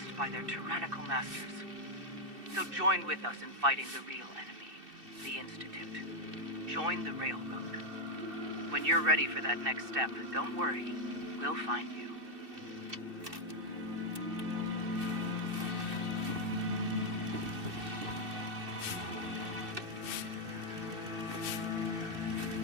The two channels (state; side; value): late; left; 2.6 ms